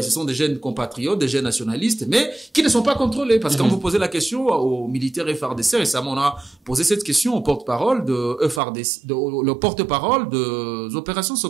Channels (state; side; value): drops out; left; at 8.6 s